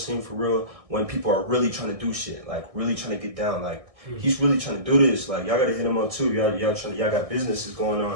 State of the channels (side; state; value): left; late; 1.6 ms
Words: for real. When people are really trying to do shit, like really trying to get down, like he's really trying to do this. Like y'all gotta hit him up too. Y'all got businesses going